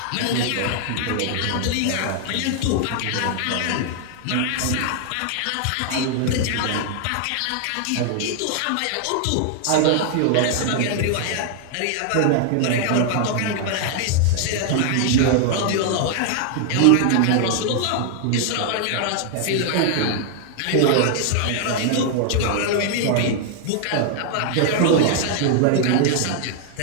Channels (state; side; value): different; both; correlation 0.00